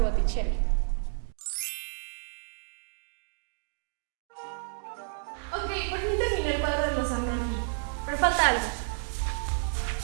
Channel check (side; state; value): left; silent; digital silence